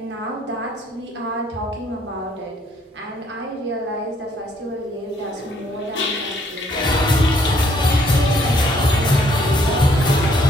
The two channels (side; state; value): both; normal; correlation 0.66